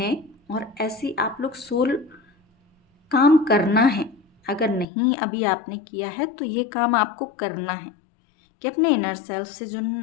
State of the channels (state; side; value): drops out; right; at 4.9 s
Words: और ऐसी आप लोग सोल काम करना है। अगर नहीं अभी आपने किया है तो ये काम आपको करना है कि अपने इनर सेल्फ से